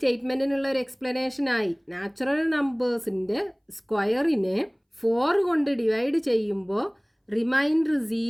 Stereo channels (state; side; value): identical; both; correlation 1.00